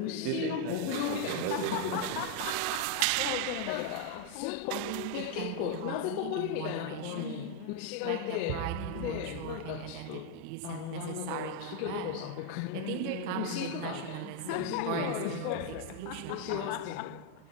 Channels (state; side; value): different; both; correlation 0.01